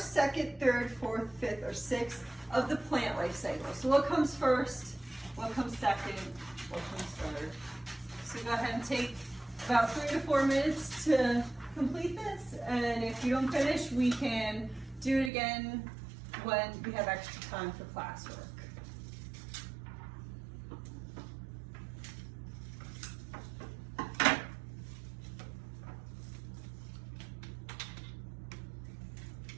second, third, fourth, fifth, or sixth of the plant life cycle. So what comes first, what comes second, what comes third. So go ahead and take about 3 to 4 minutes to complete this, and if you don't finish, we can do it again when we have extra time for classwork.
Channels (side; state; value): left; drops out; at 15.3 s